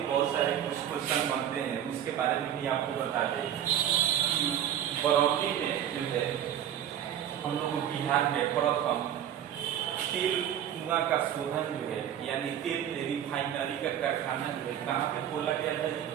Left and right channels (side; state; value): left; quieter; 10.3 dB